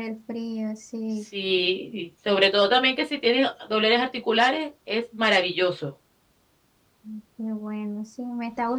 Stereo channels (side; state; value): both; identical; correlation 1.00